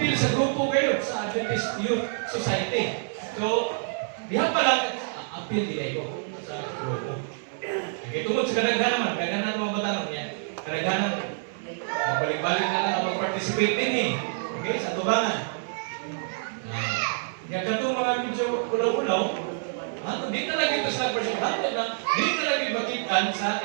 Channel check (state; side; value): silent; left; 60 dB below the other